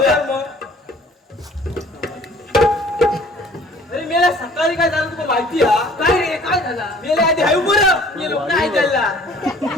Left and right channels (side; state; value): both; normal; correlation 0.52